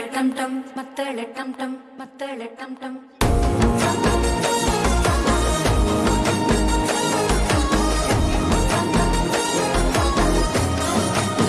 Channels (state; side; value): identical; both; correlation 1.00